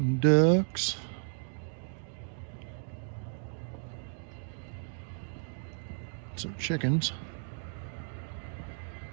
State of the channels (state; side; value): silent; left; digital silence